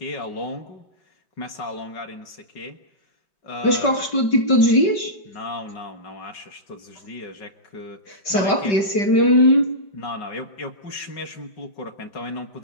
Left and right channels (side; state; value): right; late; 5.1 ms